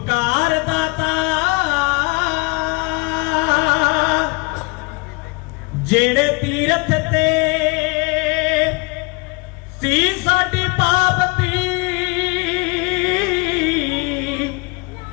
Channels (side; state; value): right; quieter; 27.8 dB